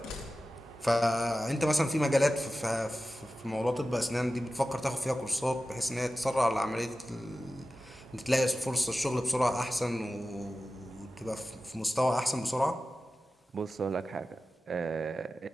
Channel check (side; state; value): both; normal; correlation 0.94